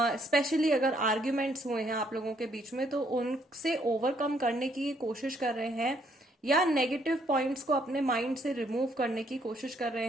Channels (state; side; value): normal; both; correlation 0.69